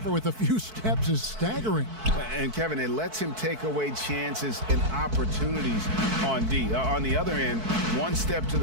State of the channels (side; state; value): left; late; 4.6 ms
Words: with a few steps is staggering. And Kevin, it lets him take away chances and opportunities on D. On the other end, one step to